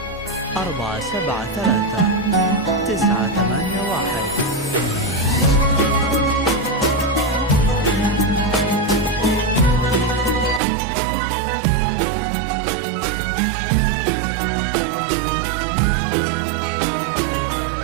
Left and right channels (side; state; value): left; drops out; at 10.6 s